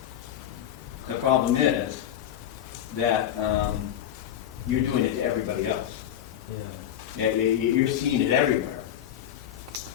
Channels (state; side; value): quieter; right; 10.7 dB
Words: The problem is that you're doing it to everybody else. Yeah, you're seeing it everywhere.